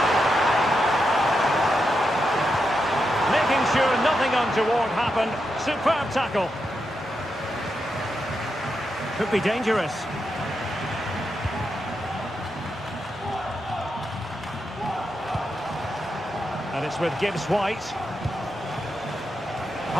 Making sure nothing untoward happened. Superb tackle. Could be dangerous. And it's with Gibbs-White.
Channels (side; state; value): both; normal; correlation 0.85